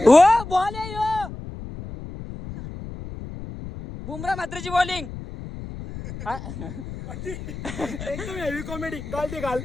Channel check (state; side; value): noise; left; rumble, 10 dB below the sound